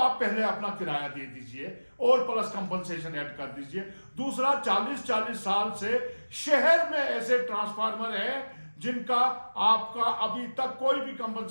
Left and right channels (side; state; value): both; inverted; correlation -1.00